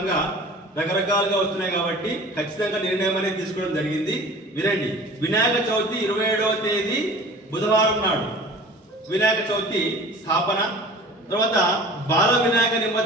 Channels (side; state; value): both; normal; correlation 0.43